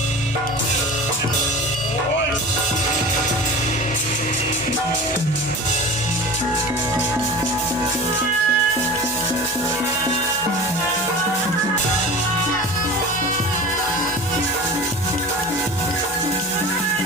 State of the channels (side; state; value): both; normal; correlation 0.35